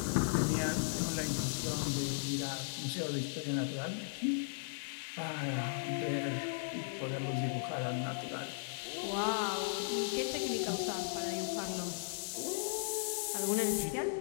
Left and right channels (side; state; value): right; silent; 53 dB below the other